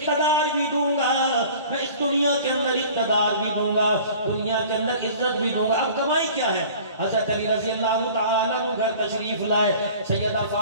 بھی دوں گا میں، اس دنیا کے اندر اقتدار بھی دوں گا، دنیا کے اندر عزت بھی دوں گا۔ اب کمائی کیا ہے؟ حضرت علی رضی اللہ تعالیٰ عنہ گھر تشریف لائے، سیدہ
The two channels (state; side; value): inverted; both; correlation -0.45